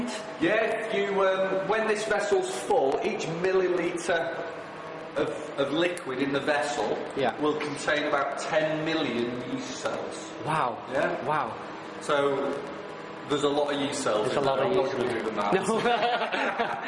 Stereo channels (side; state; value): both; identical; correlation 1.00